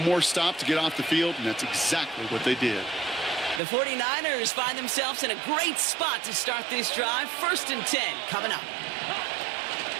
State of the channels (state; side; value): drops out; left; at 3.6 s